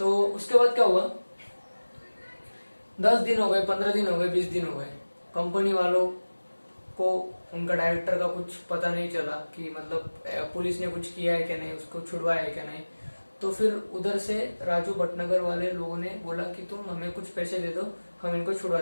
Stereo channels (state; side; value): inverted; both; correlation -1.00